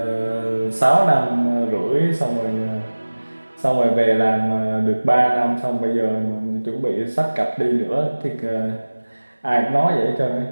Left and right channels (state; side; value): inverted; both; correlation -1.00